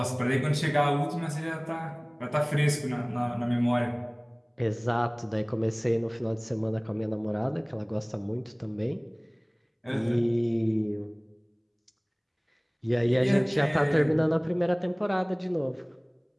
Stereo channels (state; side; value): identical; both; correlation 1.00